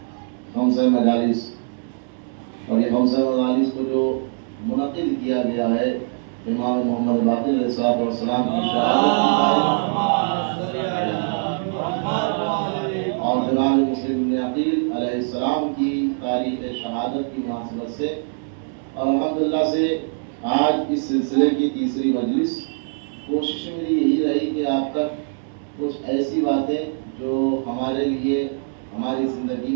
خمسہ مجالس، اور یہ خمسہ مجالس کو جو منعقد کیا گیا ہے امام محمد باقر علیہ السلام کی شہادت اور جناب مسلم بن عقیل علیہ السلام کی تاریخ شہادت کی مناسبت سے، اور الحمدللہ سے آج اس سلسلے کی تیسری مجلس. کوشش میری یہی رہی کہ آپ تک کچھ ایسی باتیں جو ہمارے لیے، ہماری زندگی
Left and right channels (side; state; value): left; silent; digital silence